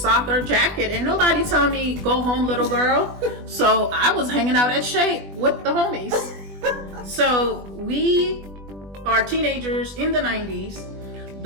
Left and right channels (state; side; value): late; left; 20 ms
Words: jacket, and nobody told me go home, little girl. So I was hanging out at Shea with the homies. So we are teenagers in the 90s,